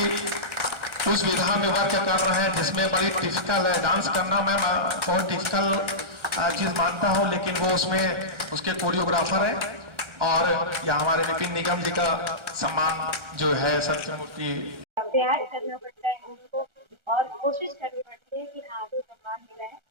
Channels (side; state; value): left; late; 1.3 ms